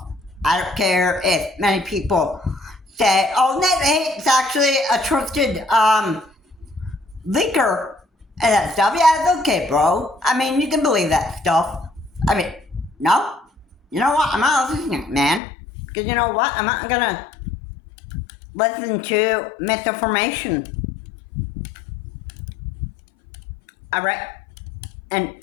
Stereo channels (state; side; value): drops out; right; at 15.4 s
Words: I don't care if many people say, oh, Nate the Hate's actually a trusted leaker and that stuff. Yeah, it's okay, bro. I mean, you can believe that stuff. I mean, no. You know what? I'm not listening, man. Because you know what? I'm not gonna listen to misinformation. Alright?